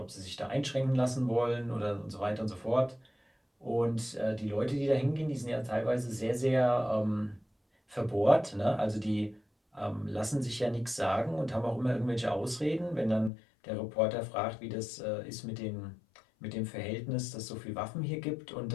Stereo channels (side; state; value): right; drops out; at 13.3 s